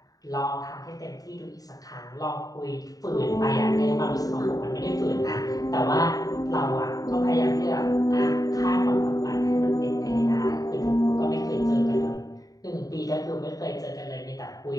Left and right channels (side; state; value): right; late; 0.18 ms